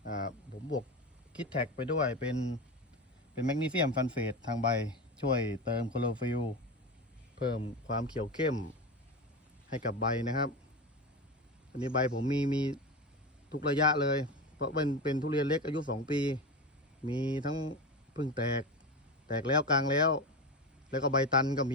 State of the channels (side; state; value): both; normal; correlation 0.22